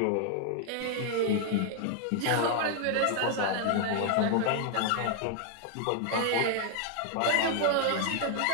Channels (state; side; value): different; both; correlation 0.00